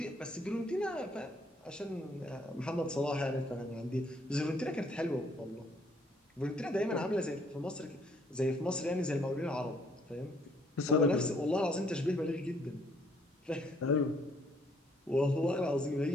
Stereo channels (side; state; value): both; normal; correlation 0.66